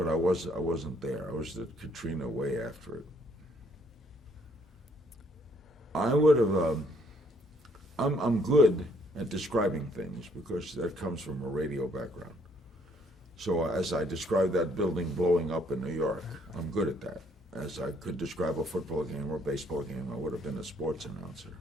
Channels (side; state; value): both; normal; correlation 0.66